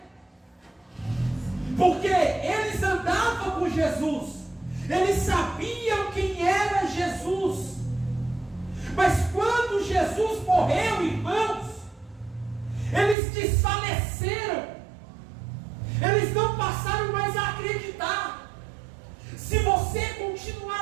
porque eles andavam com Jesus, eles sabiam quem era Jesus, mas quando Jesus morreu, irmãos, eles desfaleceram, eles não passaram mais a acreditar. Se você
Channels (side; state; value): left; drops out; at 13.2 s